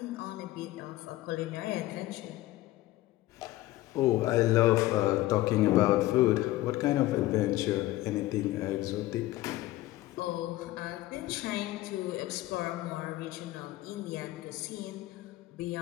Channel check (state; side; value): quieter; right; 17.0 dB